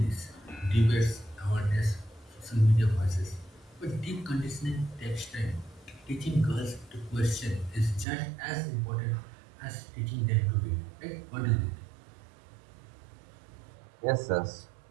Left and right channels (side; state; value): left; drops out; at 8.1 s